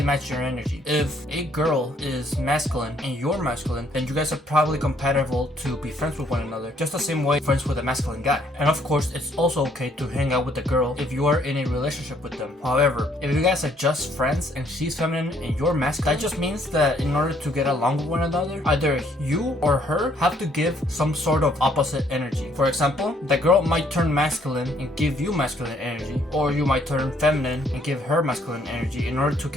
match your energy. If a girl is masculine and you're masculine, then you guys are probably compatible to be friends with one another, just the same way friends with a masculine guy. And of course, it's also okay to hang out with a girl if you are in a relationship with them. However, if you guys are just friends and she's feminine and you're masculine, that just means that in order to get along with one another, either you or her have to give some sort of opposite energy. For example, the girl might turn masculine and give you masculine energy, or you might turn feminine and give her masculine energy in order to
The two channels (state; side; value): normal; both; correlation 0.66